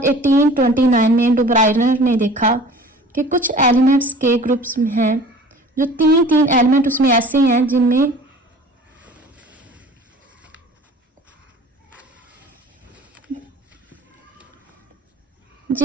1829 में डुब्राइनर ने देखा कि कुछ एलिमेंट्स के ग्रुप्स में हैं, जो तीन एलिमेंट उसमें ऐसे हैं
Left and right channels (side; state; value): both; normal; correlation 0.45